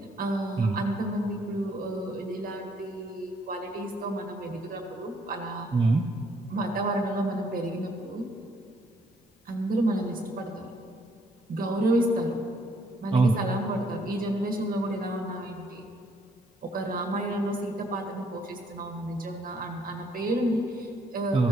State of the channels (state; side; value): normal; both; correlation 0.68